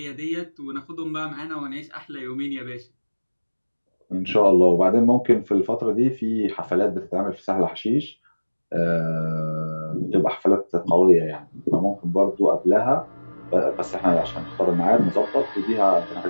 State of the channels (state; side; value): inverted; both; correlation -1.00